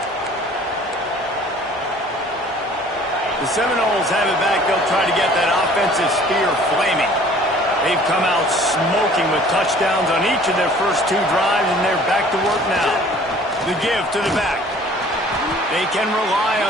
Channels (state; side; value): normal; both; correlation 0.52